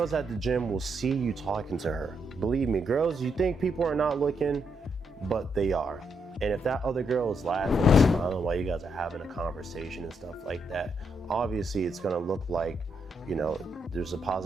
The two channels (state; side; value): normal; both; correlation 0.78